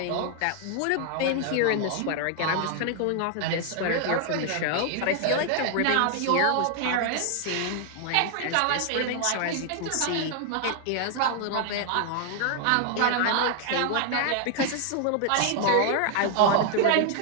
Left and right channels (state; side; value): different; both; correlation 0.00